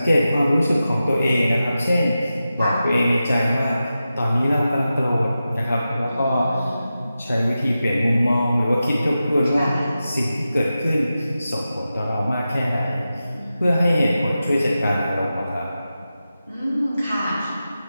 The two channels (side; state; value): both; inverted; correlation -0.92